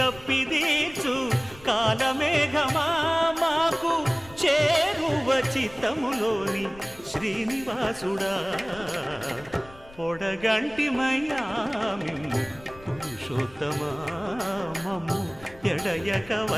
కాలమేఘమా మాకు చేరువ చిత్తములోని శ్రీనివాసుడా పొడగంటి మయ్యామిమ్ము పురుషోత్తమా మమ్ము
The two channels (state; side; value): noise; left; rumble, 21 dB below the sound